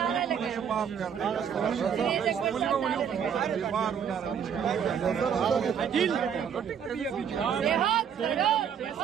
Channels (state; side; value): quieter; left; 7.9 dB